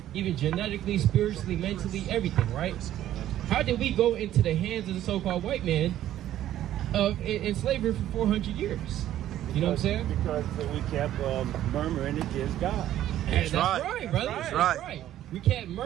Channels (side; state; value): left; quieter; 12.5 dB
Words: even genetically, spiritually, mentally, everything, right? How did we go into the hands of the so-called white man in slavery for 400 years? You know what I'm saying? Because we kept murmuring against God. That's right, brother. That's right. We kept